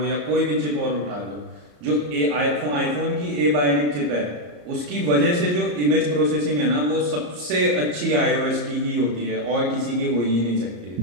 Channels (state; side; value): late; left; 34 ms